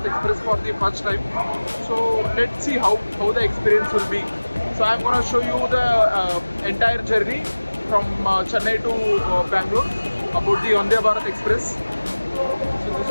Express for the first time. So let's see how the experience will be. So I'm gonna show you the entire journey from Chennai to Bangalore about the Vande Bharat Express. So this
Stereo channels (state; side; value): inverted; both; correlation -1.00